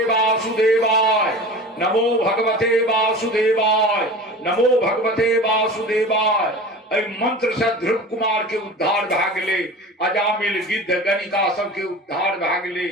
वासुदेवाय नमो भगवते वासुदेवाय नमो भगवते वासुदेवाय। एहि मंत्र से ध्रुव कुमार के उद्धार भए गेलै अजामिल गिद्ध गणिका सबके उद्धार भए गेलै।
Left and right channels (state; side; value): normal; both; correlation 0.36